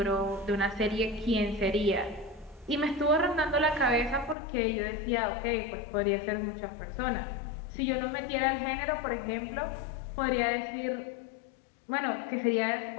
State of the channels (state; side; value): drops out; right; at 4.4 s